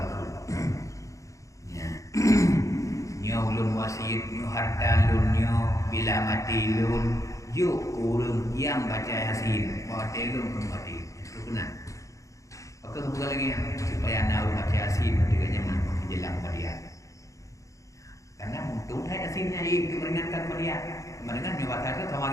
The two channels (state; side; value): late; right; 0.15 ms